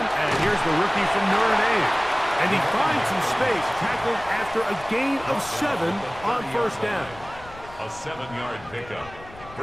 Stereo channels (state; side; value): noise; left; rumble, 19 dB below the sound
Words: here's the rookie from Notre Dame. And he finds some space, tackled after a gain of 7 on first down. A 7-yard pickup